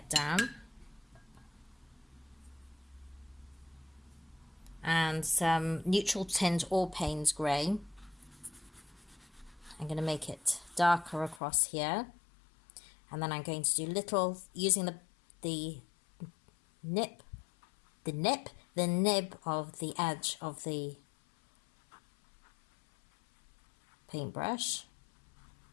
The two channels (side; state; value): right; drops out; at 11.4 s